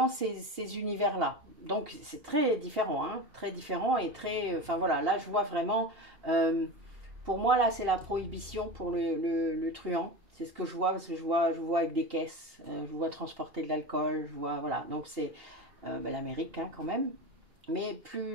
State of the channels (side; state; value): left; late; 2.8 ms